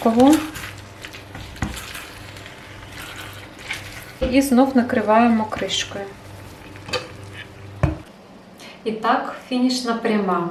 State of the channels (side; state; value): both; identical; correlation 1.00